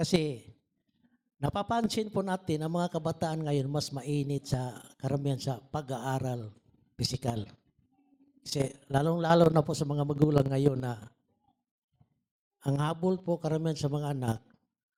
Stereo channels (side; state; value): both; identical; correlation 1.00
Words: napapansin po natin ang mga kabataan ngayon mas mainit sa karamihan sa pag-aaral pisikal. Kasi lalong-lalo na po sa mga magulang ngayon na ang habol po karamihan sa mga anak,